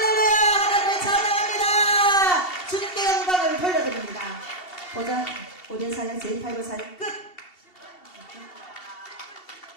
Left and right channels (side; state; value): right; late; 2.7 ms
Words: 하나님을 찬양합니다. 주님께 영광을 돌려드립니다. 보자 5대 사역 제5 사역 끝.